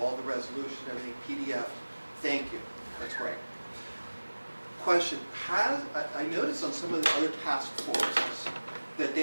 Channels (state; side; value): inverted; both; correlation -1.00